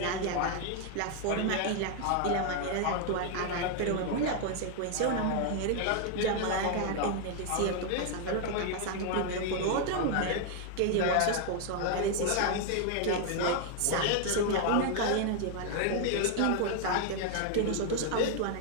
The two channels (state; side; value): different; both; correlation 0.00